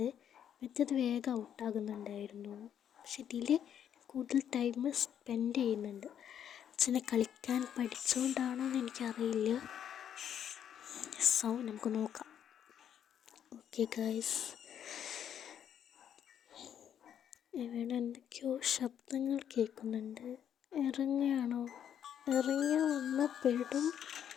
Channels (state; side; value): quieter; right; 9.3 dB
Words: മറ്റേത് വേഗം ഔട്ടാകുന്നുണ്ടായിരുന്നു. പക്ഷെ ഇതിൽ കൂടുതൽ ടൈം സ്പെൻഡ് ചെയ്യുന്നുണ്ട്. അച്ഛനെ കളിക്കാൻ പഠിച്ചുകൊണ്ടാണോ എന്ന് എനിക്കറിയില്ല. സോ നമുക്ക് നോക്കാം. ഓക്കെ ഗൈസ്, ഇവിടെ എന്തൊക്കെയോ ശബ്ദങ്ങൾ കേൾക്കുന്നുണ്ട്. ഇറങ്ങിയാണോ? ഇറങ്ങി വന്നാൽ പെടും.